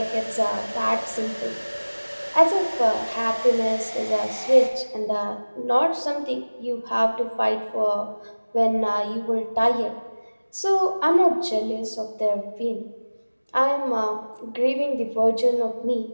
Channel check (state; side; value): inverted; both; correlation -1.00